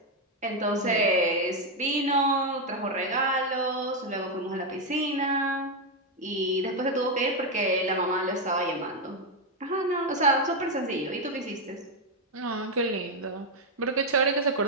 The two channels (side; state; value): both; normal; correlation 0.04